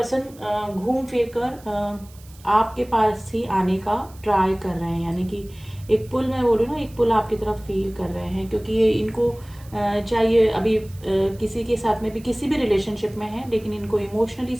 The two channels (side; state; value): right; noise; hiss, 24 dB below the sound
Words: घूम फिर कर आपके पास ही आने का ट्राई कर रहे हैं। यानी कि एक पुल, मैं बोल रही हूँ ना, एक पुल आपकी तरफ फील कर रहे हैं, क्योंकि ये इनको चाहिए अभी किसी के साथ में भी, किसी भी रिलेशनशिप में है, लेकिन इनको इमोशनली